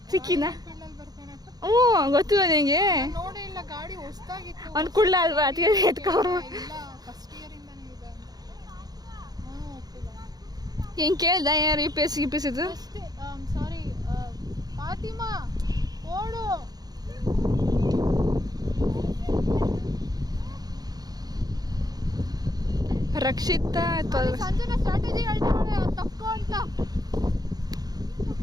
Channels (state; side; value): late; left; 0.19 ms